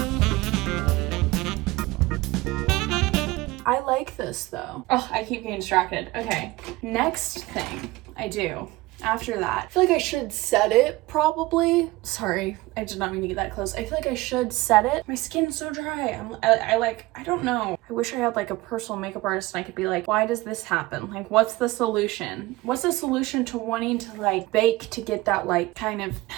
I like this though. Oh, I keep getting distracted. Okay, next thing I do after that, I feel like I should set it probably. Sorry, I did not mean to get that close. I feel like I should set it. My skin's so dry. I don't know. I wish I had like a personal makeup artist and I could be like, why does this happen? Like, what's the solution? What's the solution to wanting to like bake to get that like kind of,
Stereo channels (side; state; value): left; quieter; 20.0 dB